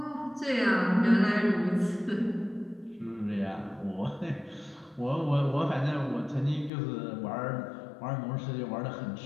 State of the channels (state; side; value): drops out; right; at 6.7 s